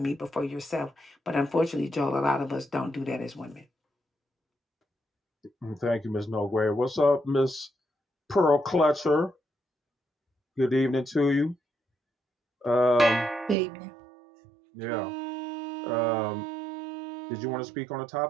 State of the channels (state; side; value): drops out; left; at 13.6 s